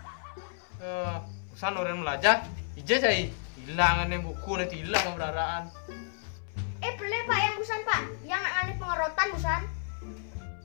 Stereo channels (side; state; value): right; silent; 57 dB below the other